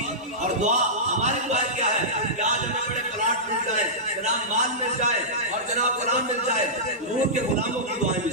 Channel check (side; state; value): both; normal; correlation -0.15